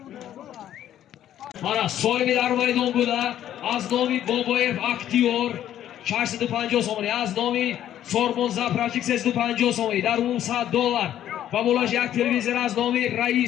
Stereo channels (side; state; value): right; quieter; 11.4 dB